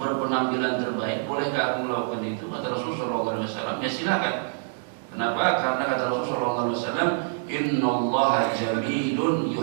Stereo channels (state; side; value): silent; left; digital silence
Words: terbaik, bolehkah aku melakukan itu?" Kata Rasulullah SAW, "Ya silakan." Kenapa? Karena kata Rasulullah SAW, "Innallaha jamilun